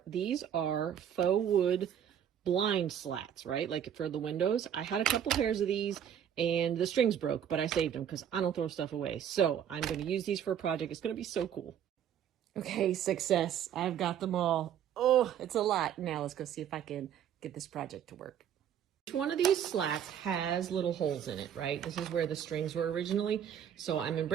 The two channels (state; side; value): quieter; left; 9.3 dB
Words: These are faux wood blind slats, right? Like for the windows. I had a couple pairs of these and the strings broke, but I saved them because I don't throw stuff away. So I'm going to use these for a project. It's going to be so cool. Okay, success. I've got them all. Oh, it's a lot. Now let's go see if I can get this project to work. Each one of these slats has little holes in it, right? This is where the strings were originally. So I'm